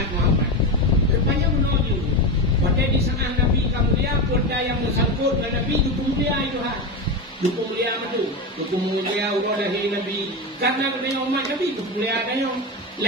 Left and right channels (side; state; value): both; normal; correlation 0.17